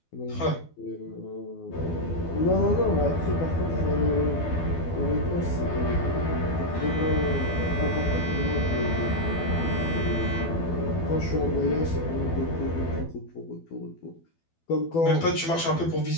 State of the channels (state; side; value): late; right; 12 ms